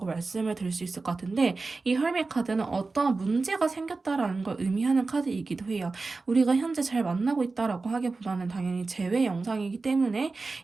말씀을 드릴 수 있을 것 같은데 이 헐밋 카드는 어떠한 문제가 생겼다라는 걸 의미하는 카드이기도 해요. 우리가 현재 잘 만나고 있다라고 하기보다는 당연히 재회 영상이기 때문에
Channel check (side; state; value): left; quieter; 3.8 dB